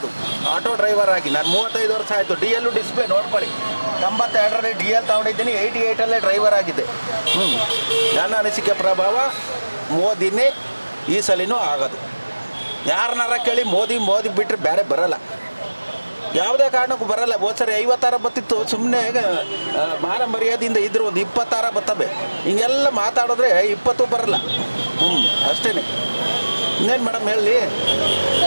ಆಟೋ ಡ್ರೈವರ್ ಆಗಿ. ನಾನು 35 ವರ್ಷ ಆಯಿತು. ಡಿ ಎಲ್ಲು ಡಿಸ್ಪ್ಲೇ ನೋಡ್ಕೊಳ್ಳಿ, 92ರಲ್ಲಿ ಡಿ ಎಲ್ ತೊಗೊಂಡಿದ್ದೀನಿ, 88ಅಲ್ಲೇ ಡ್ರೈವರ್ ಆಗಿದ್ದೆ. ನನ್ನ ಅನಿಸಿಕೆ ಪ್ರಭಾವ ಮೋದಿನೇ ಈ ಸಲಿನೂ ಆಗೋದು. ಯಾರನ್ನಾರ ಕೇಳಿ ಮೋದಿ ಬಿಟ್ಟರೆ ಬೇರೆ ಬರಲ್ಲ, ಯಾವುದೇ ಕಾರಣಕ್ಕೂ ಬರಲ್ಲ. ಹೋದ ಸರಿ 50 ಬತ್ತಿತ್ತು, ಸುಮ್ಮನೆ ಮಾನ ಮರ್ಯಾದೆಯಿಂದ ಇದ್ರು ಒಂದು 20 ಬರ್ತವೆ. ಹಿಂಗೆಲ್ಲ ಮಾತಾಡಿದ್ರೆ 20 ಬರಲ್ಲ. ಅಷ್ಟೇ. ಇನ್ನೇನು ಮೇಡಮ್ ಹೇಳಿ.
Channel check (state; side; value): inverted; both; correlation -1.00